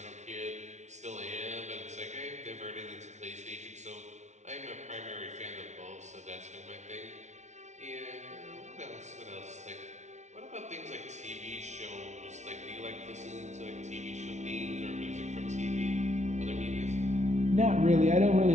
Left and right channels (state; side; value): late; left; 0.33 ms